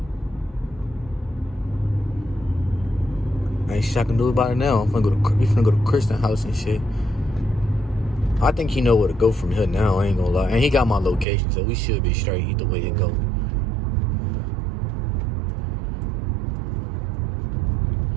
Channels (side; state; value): left; drops out; at 11.2 s